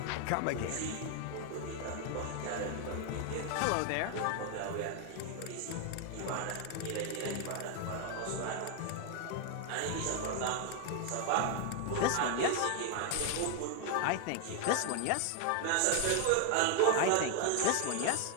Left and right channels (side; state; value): both; different; correlation 0.00